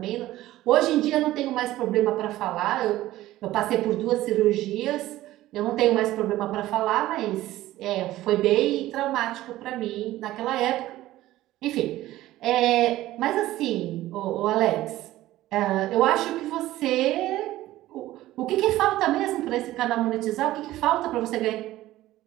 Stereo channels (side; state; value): left; quieter; 15.6 dB